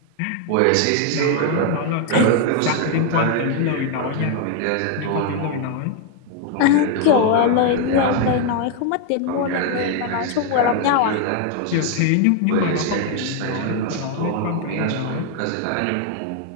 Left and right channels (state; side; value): different; both; correlation 0.00